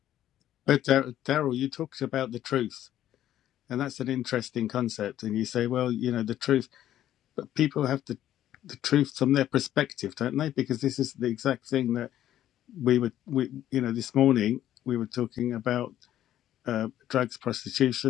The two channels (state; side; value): quieter; right; 12.2 dB